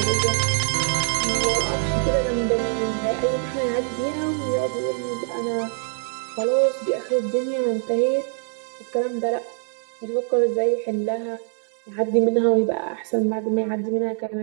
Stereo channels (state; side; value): silent; left; 63 dB below the other